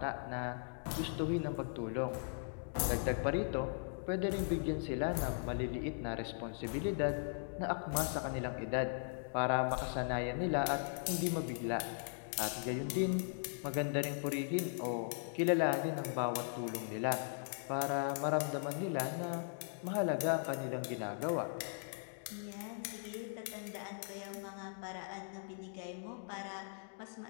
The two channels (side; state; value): right; silent; digital silence